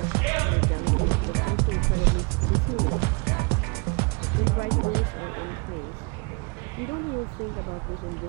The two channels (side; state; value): left; quieter; 30.1 dB